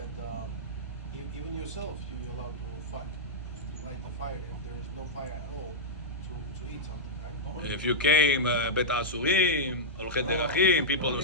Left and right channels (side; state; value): both; normal; correlation -0.09